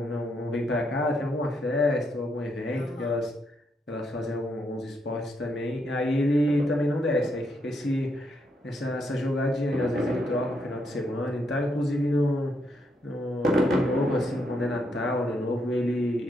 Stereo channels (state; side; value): normal; both; correlation 0.78